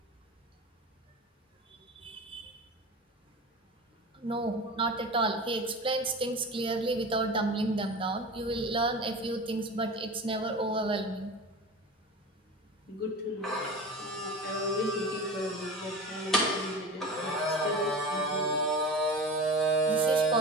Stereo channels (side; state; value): both; normal; correlation 0.31